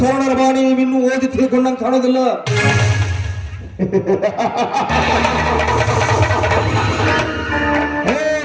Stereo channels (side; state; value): both; identical; correlation 1.00